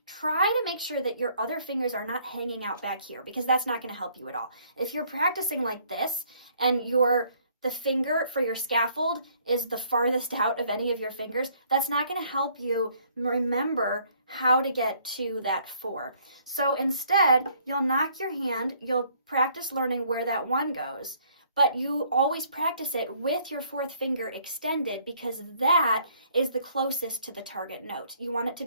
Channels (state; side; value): inverted; both; correlation -0.63